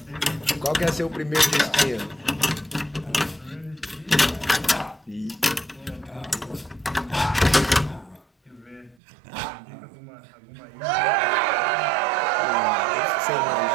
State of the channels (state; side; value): drops out; left; at 9.0 s